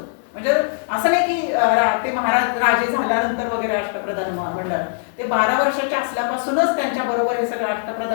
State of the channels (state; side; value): silent; right; 65 dB below the other